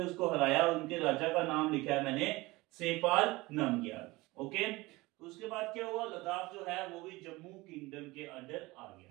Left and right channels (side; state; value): left; quieter; 21.4 dB